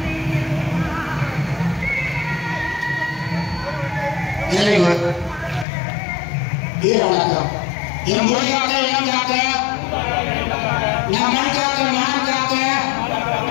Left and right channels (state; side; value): drops out; right; at 5.7 s